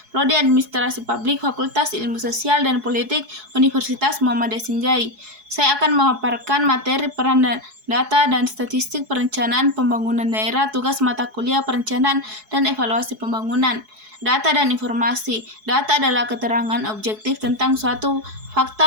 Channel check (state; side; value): late; left; 4.7 ms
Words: Prodi Administrasi Publik Fakultas Ilmu Sosial dan Politik Universitas Muhammad Yasinjai. Saya akan memaparkan materi peran data dan statistik perencanaan pembangunan daerah, tugas mata kuliah perencanaan dan evaluasi pembangunan. Data dan informasi. Data adalah keterangan objektif tentang suatu